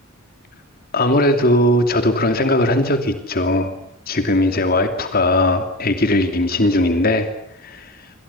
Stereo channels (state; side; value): normal; both; correlation 0.28